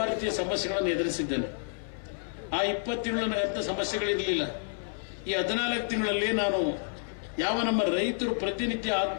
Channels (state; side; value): silent; right; 56 dB below the other